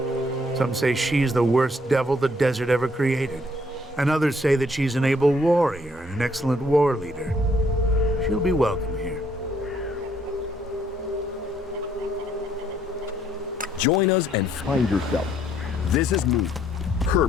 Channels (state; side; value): normal; both; correlation 0.67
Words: Some say she's the worst devil the desert ever created. And others say that she's an able warrior and an excellent war leader. She'll be welcome here. Join us and find yourself. This is me,